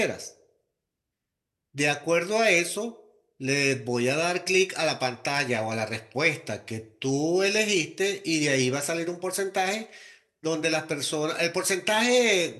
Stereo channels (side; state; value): both; identical; correlation 1.00